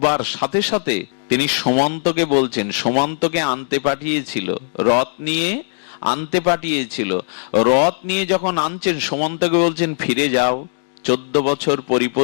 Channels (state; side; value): silent; right; digital silence